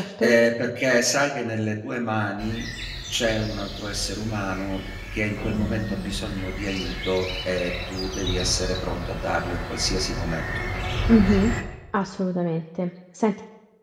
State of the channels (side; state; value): both; identical; correlation 1.00